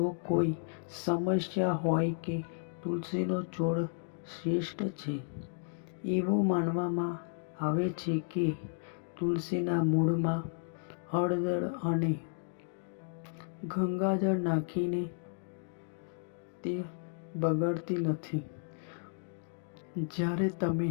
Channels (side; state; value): right; silent; digital silence